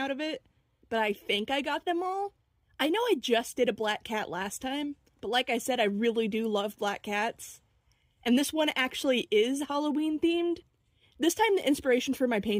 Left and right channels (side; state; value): both; identical; correlation 1.00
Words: of it, but I think I got them all. I know I just did a black cat last time, but like I said, I really do love black cats. And this one actually is Halloween themed. This time the inspiration for my